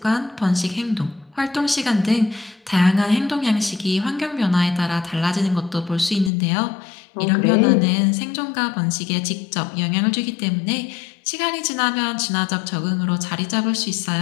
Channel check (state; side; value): drops out; right; at 6.3 s